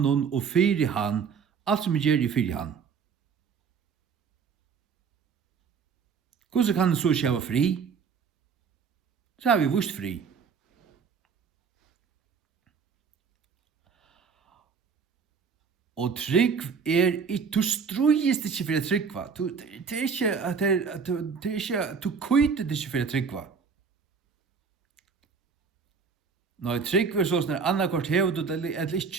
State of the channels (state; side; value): quieter; left; 5.9 dB